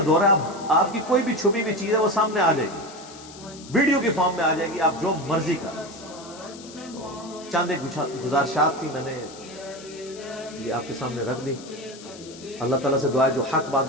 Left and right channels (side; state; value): left; noise; hiss, 18 dB below the sound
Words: دور ہے. اب آپ کی کوئی بھی چھپی ہوئی چیز ہے وہ سامنے آ جائے گی, ویڈیو کی فارم میں آ جائے گی, آپ جو مرضی کر. چاند ایک گزارشات تھی, میں نے یہ آپ کے سامنے رکھ دی. اللہ تعالیٰ سے دعا ہے جو حق